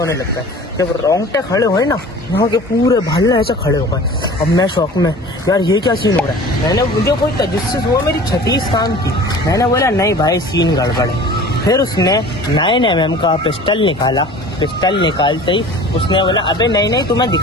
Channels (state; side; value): normal; both; correlation 0.42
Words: लगता है। जब रोंगटे खड़े हुए ना, यहाँ के पूरे भालने ऐसे खड़े हो गए। अब मैं शौक में यार ये क्या सीन हो रहा है, मैंने मुझे कोई तजस्सुस हुआ, मेरी 36 काम की। मैंने बोला नहीं भाई सीन गड़बड़ है। फिर उसने 9mm का पिस्टल निकाला, पिस्टल निकालते ही उसने बोला अबे नहीं तुम्हें